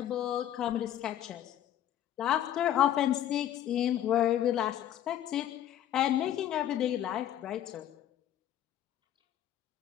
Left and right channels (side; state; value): right; quieter; 11.4 dB